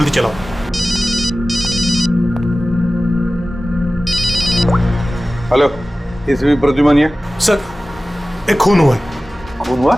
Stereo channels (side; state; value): both; normal; correlation 0.96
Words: चलाओ। हेलो, इसवी प्रद्युमन सर, एक खून हुआ है। खून हुआ?